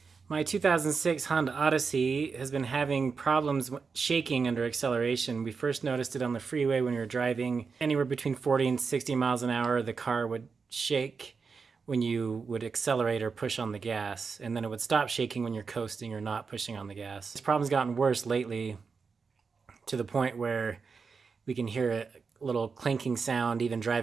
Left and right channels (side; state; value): left; quieter; 5.2 dB